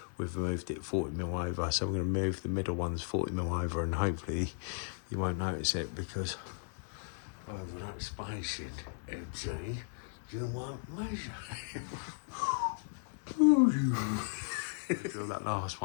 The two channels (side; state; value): right; silent; 54 dB below the other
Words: we've moved it 40mm over. So I'm going to move the middle ones 40mm over, and hopefully you won't notice it because over that spacing, empty, you won't measure. Drill that last